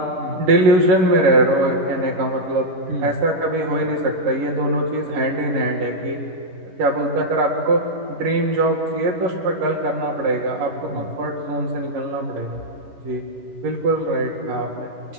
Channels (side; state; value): left; late; 10 ms